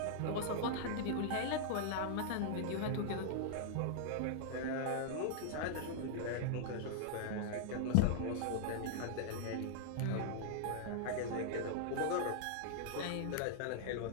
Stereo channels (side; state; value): both; different; correlation -0.01